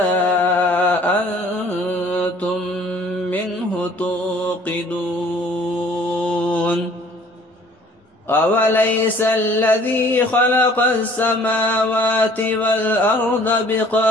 أنتم منه توقدون أوليس الذي خلق السماوات والأرض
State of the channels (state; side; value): normal; both; correlation 0.55